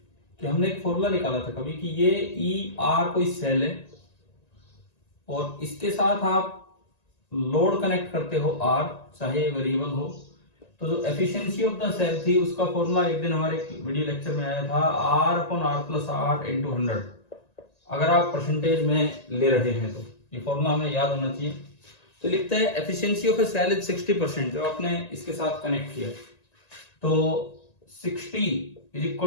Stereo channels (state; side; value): late; right; 1.9 ms